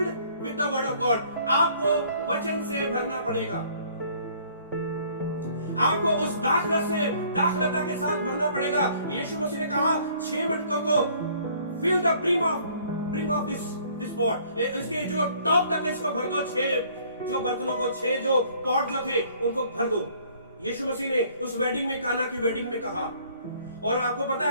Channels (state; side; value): inverted; both; correlation -0.58